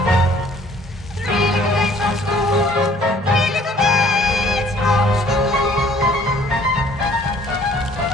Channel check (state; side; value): normal; both; correlation 0.57